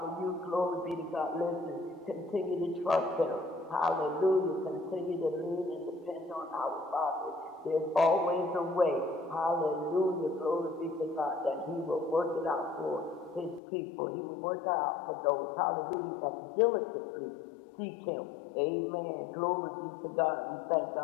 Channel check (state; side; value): drops out; right; at 13.6 s